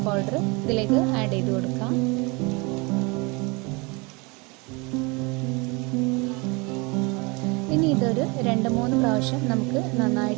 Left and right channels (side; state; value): left; quieter; 27.9 dB